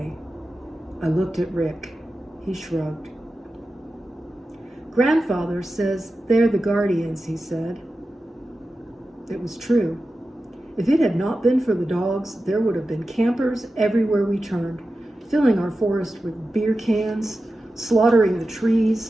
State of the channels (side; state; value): both; normal; correlation 0.93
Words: I looked at Rick. He shrugged. Grandfather says they're the guardians, he said. It was true. If it had not been for the dogs, there would have been campers everywhere we turned, filling our forest with beer cans, slaughtering the